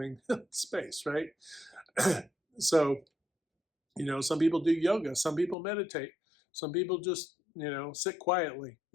space, right? So, some people do yoga, some people meditate, some people just, sit quietly,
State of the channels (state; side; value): drops out; right; at 5.6 s